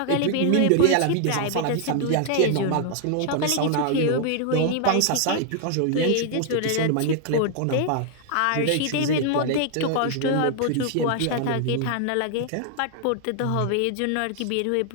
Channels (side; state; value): both; different; correlation 0.00